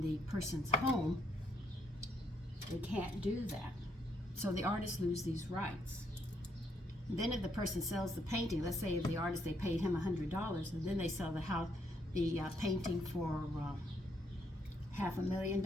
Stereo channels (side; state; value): both; normal; correlation 0.74